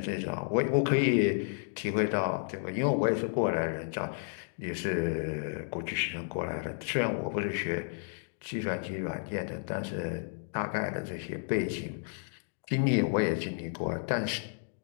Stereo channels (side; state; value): right; silent; digital silence